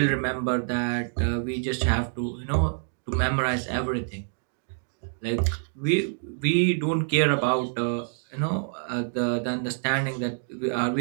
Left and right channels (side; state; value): left; silent; digital silence